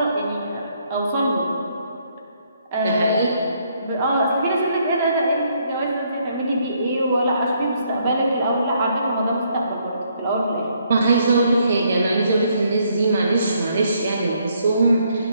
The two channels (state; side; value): inverted; both; correlation -0.70